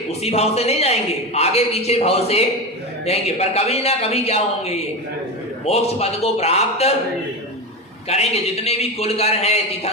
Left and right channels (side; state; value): both; normal; correlation 0.19